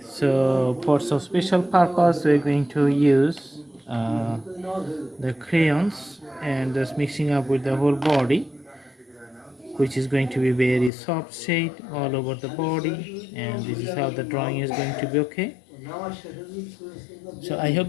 so for some special purpose we're going to use the crayons and just mixing up with the whole body, which is going to be very soft shade all over the body, and this is how the drawing is going to be. Okay, so I hope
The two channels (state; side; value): drops out; right; at 10.9 s